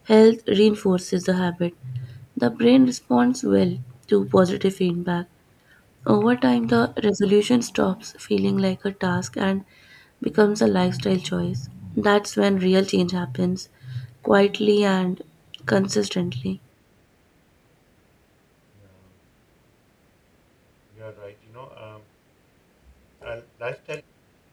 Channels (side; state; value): both; identical; correlation 1.00